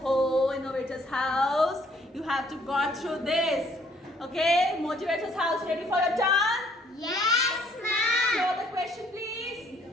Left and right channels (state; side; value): normal; both; correlation 0.63